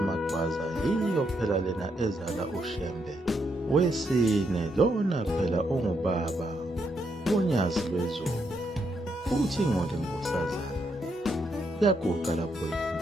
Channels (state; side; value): normal; both; correlation 0.78